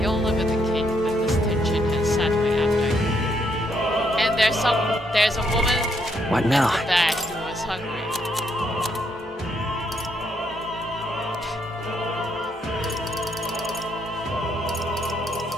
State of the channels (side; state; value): both; normal; correlation 0.75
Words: Yola with the cake, but this tension has sat my appetite. And there's a woman What now? at the back who was hungry.